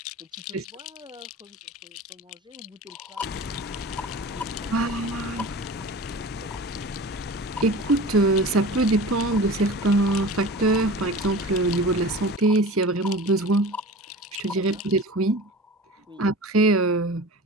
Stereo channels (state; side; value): normal; both; correlation 0.36